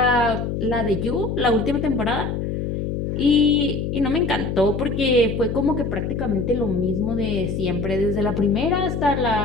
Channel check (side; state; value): left; noise; hum, 3 dB below the sound